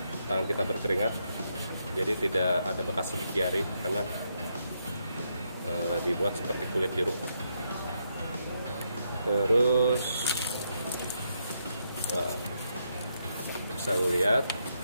tangan kita berkeringat, jadi tidak ada bekas sidik jari karena dibuat seperti kulit jeruk. Terus bisa lihat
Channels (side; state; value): both; inverted; correlation -0.79